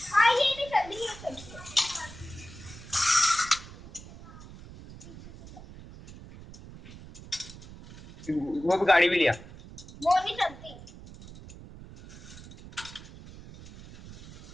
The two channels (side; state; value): right; noise; rumble, 16 dB below the sound